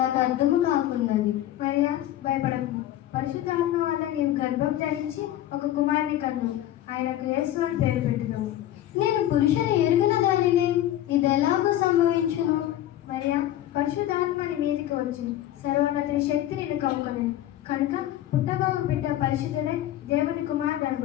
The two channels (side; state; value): right; quieter; 13.0 dB